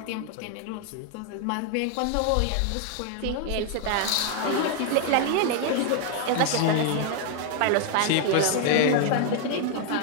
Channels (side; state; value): both; different; correlation 0.00